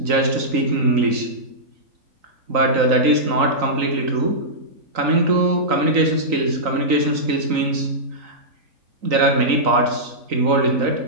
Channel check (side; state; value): left; late; 3.9 ms